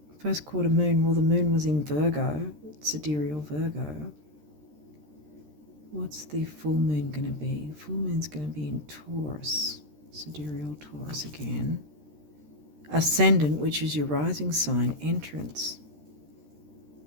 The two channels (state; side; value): late; left; 13 ms